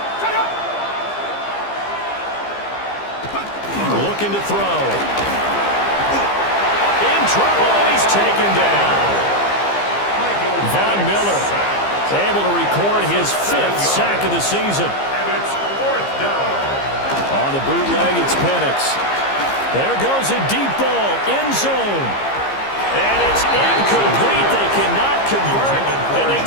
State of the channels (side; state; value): right; late; 15 ms